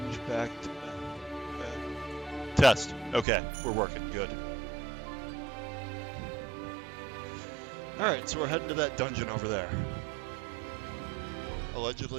back to... Test. Okay, we're working. Good. Alright, so we're heading to that dungeon over there.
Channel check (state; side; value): drops out; left; at 3.2 s